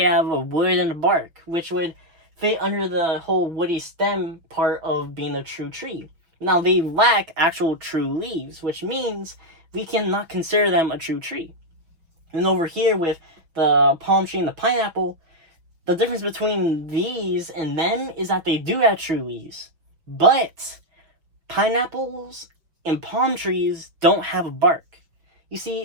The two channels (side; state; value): left; late; 5.9 ms